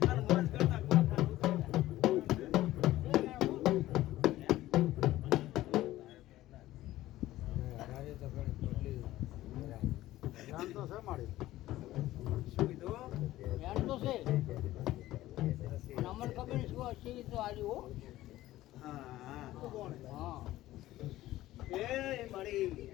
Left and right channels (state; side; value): quieter; right; 15.6 dB